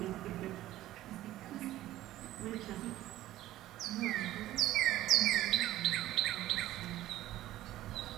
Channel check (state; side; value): quieter; left; 14.7 dB